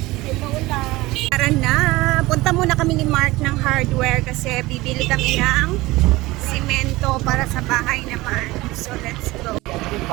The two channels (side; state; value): left; quieter; 19.9 dB